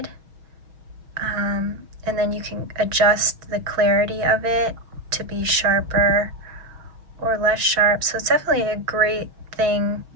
And then you can adjust the clarity of it to be sharper or less sharp. So it's definitely a great thing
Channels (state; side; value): late; left; 6.2 ms